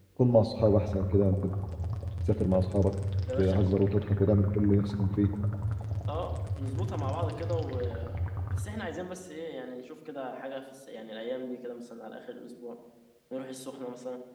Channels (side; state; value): both; identical; correlation 1.00